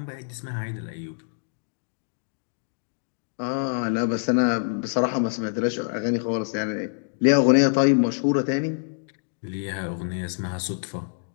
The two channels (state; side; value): silent; right; digital silence